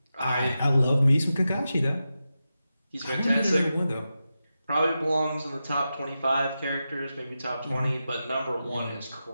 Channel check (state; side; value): inverted; both; correlation -0.91